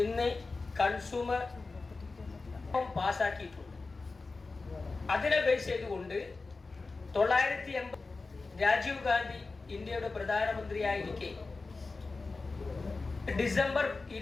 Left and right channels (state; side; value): quieter; right; 3.8 dB